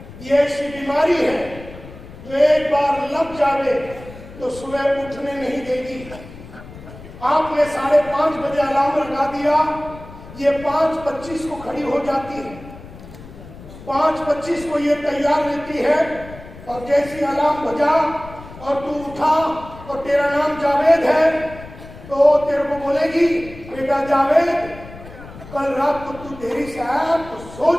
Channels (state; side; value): noise; left; rumble, 16 dB below the sound